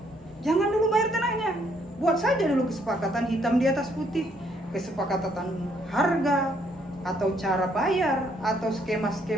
jangan dulu bayar tanahnya. Buat saja dulu kesepakatan hitam di atas putih, kesepakatan harga atau cara bayar atau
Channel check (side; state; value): both; normal; correlation 0.69